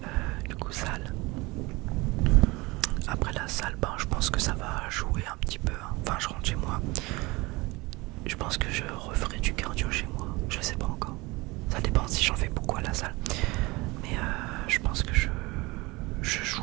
Du coup salle. Après la salle, je pense que ça va jouer un petit peu. Enfin je rentre chez moi. Je pense que je referai du cardio chez moi. Je sais pas encore. Ça dépend si j'en fais beaucoup à la salle. Mais je pense que je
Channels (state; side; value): quieter; left; 23.3 dB